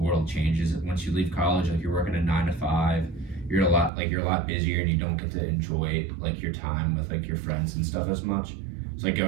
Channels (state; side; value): drops out; left; at 3.9 s